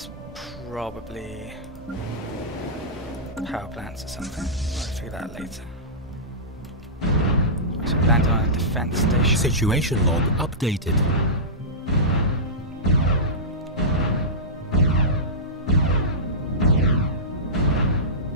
probably power plants or something. I'll figure that out later. So we landed on a defense station. Situation log updated.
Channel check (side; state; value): both; normal; correlation -0.17